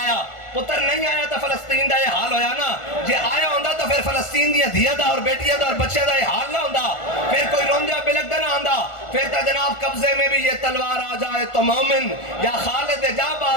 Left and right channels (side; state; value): right; late; 1.4 ms